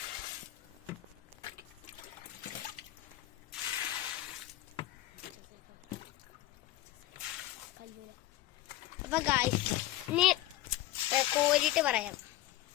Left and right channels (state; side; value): quieter; right; 15.2 dB